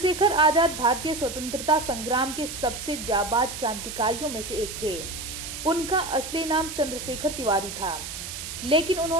आजाद भारतीय स्वतंत्रता संग्राम के सबसे जाबाज क्रांतिकारियों में से एक थे। उनका असली नाम चंद्रशेखर तिवारी था, लेकिन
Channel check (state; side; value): noise; right; hiss, 8 dB below the sound